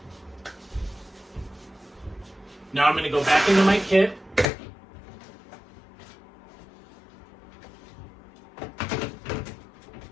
Now I'm going to go back into my kit.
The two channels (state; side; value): drops out; right; at 4.5 s